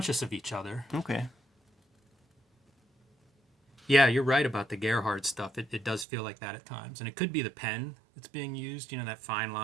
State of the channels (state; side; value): drops out; left; at 6.1 s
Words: of each other. Okay. Yeah, you're right about the Gerhardt stuff. It does feel like that at times. And it could be the pen that's being used, that fine